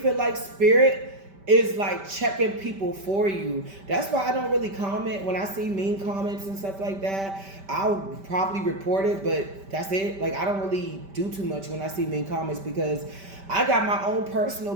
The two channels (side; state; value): left; late; 5.1 ms